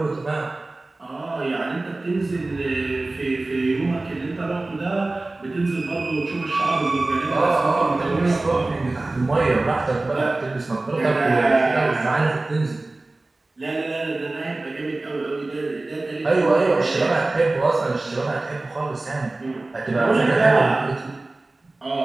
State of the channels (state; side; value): quieter; left; 3.0 dB